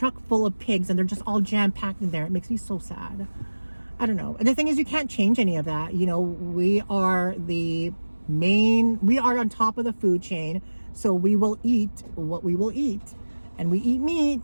full of pigs and they're just all jam packed in there. It makes me so sad. I don't know. And the thing is, you can't change any of that. You know, we are on top of the food chain, so we will eat what we will eat, and we eat meat.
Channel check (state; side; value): inverted; both; correlation -1.00